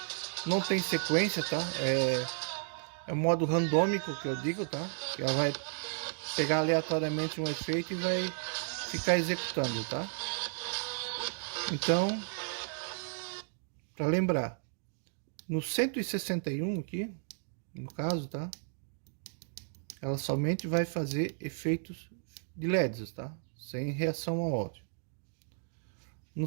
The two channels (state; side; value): silent; left; digital silence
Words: não tem sequência, tá? É o modo randômico que eu digo, tá? Ela vai pegar aleatoriamente um efeito e vai ficar executando, tá? Então, para lembrar, no 161 aqui, no caso, tá? Ela somente vai fazer efeitos de LEDs, tá? Sem reação ao áudio. No